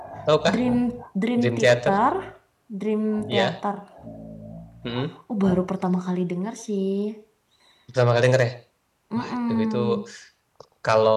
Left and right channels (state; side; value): identical; both; correlation 1.00